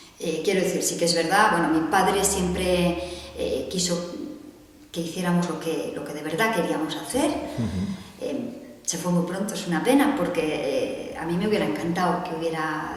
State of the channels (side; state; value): both; identical; correlation 1.00